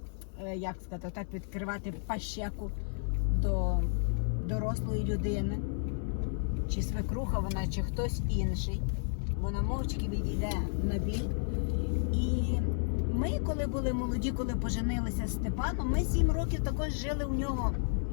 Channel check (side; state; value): right; silent; 56 dB below the other